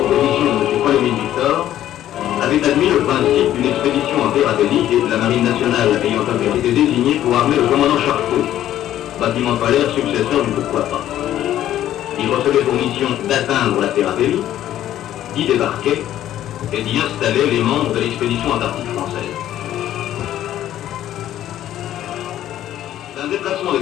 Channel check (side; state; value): right; quieter; 12.3 dB